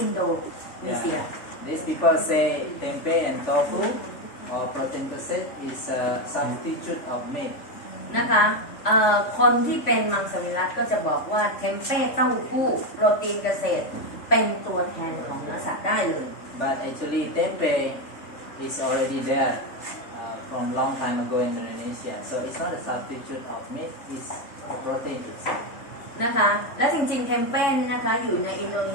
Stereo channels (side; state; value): right; late; 3.5 ms